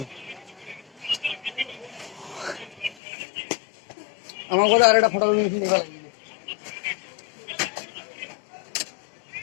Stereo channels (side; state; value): right; drops out; at 3.0 s